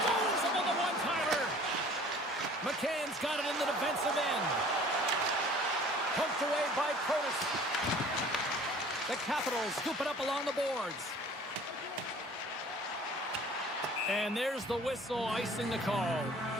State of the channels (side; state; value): both; normal; correlation 0.49